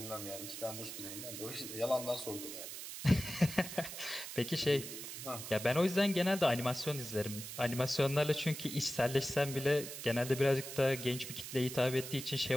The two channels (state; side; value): noise; right; hiss, 9 dB below the sound